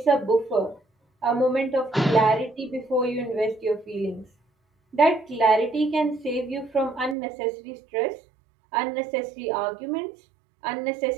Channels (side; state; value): left; drops out; at 7.2 s